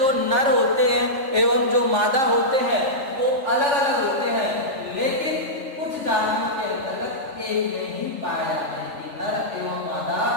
नर होते हैं एवं जो मादा होते हैं वो अलग अलग होते हैं, लेकिन कुछ जातियों के अंतर्गत एक में ही पाए जाते हैं कि नर एवं मादा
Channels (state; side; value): late; left; 3.4 ms